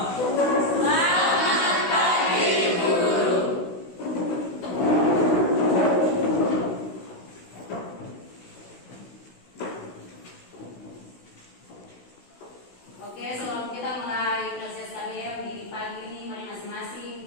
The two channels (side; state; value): right; late; 16 ms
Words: Selamat pagi, guru. Oke, sebelum kita mulai proses KBM di pagi ini, mari